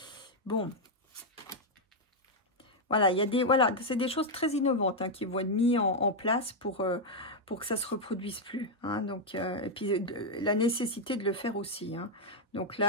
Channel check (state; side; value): normal; both; correlation 0.01